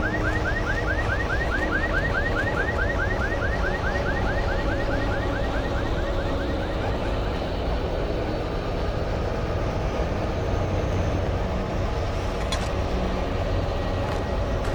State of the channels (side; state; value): both; identical; correlation 1.00